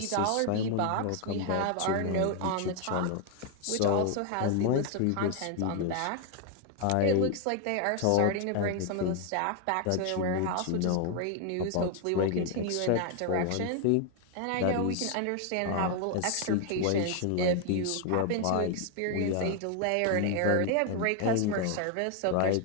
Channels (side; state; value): both; different; correlation 0.00